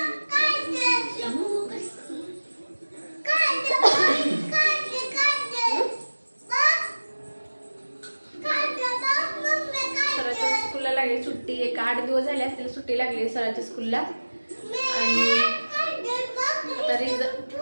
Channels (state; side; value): inverted; both; correlation -1.00